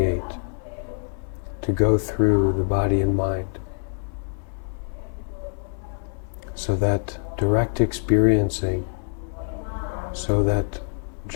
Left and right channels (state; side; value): silent; right; 62 dB below the other